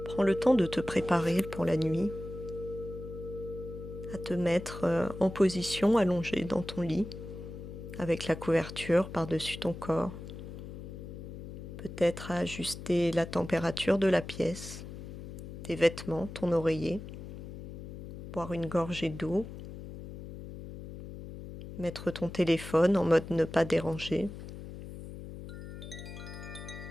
Prends le temps de te préparer pour la nuit, à te mettre en position allongée dans ton lit, avec la couverture par-dessus ton corps. Peut-être à ajuster la température de la pièce, tes vêtements, ton oreiller, boire une gorgée d'eau, mettre ton téléphone en mode ne pas déranger,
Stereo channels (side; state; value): left; noise; hum, 11 dB below the sound